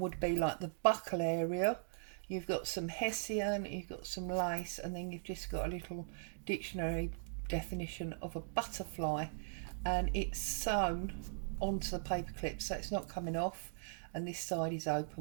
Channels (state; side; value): silent; left; digital silence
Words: be like the buckle area you've got some hessian, you've got some lace, and then you've just got a little dictionary definition of a butterfly, and it's sewn onto the paper clip so it's not coming off, and this side is